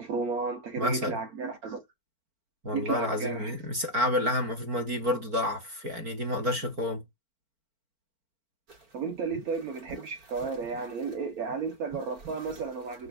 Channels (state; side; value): late; left; 4.4 ms